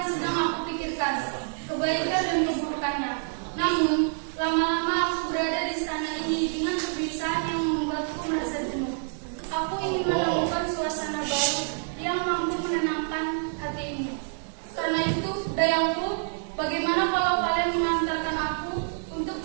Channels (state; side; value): silent; left; digital silence